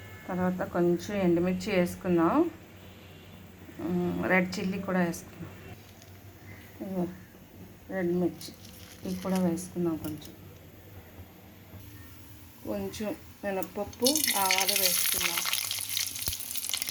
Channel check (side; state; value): both; identical; correlation 1.00